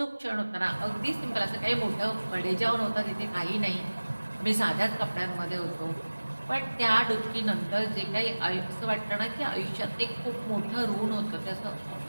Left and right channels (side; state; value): both; inverted; correlation -1.00